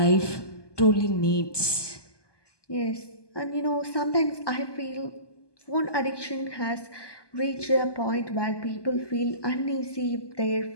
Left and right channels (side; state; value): right; late; 1.2 ms